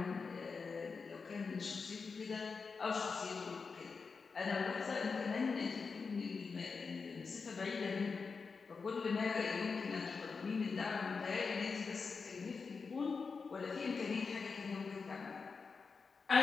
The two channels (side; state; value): right; quieter; 4.9 dB